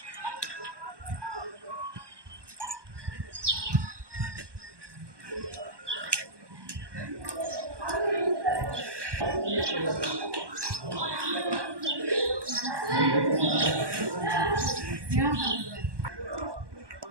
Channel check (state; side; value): late; left; 1.2 ms